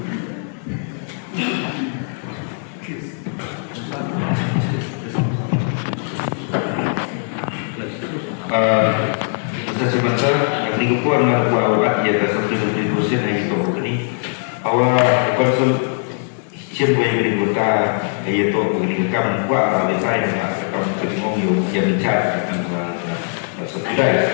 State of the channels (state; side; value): silent; right; 60 dB below the other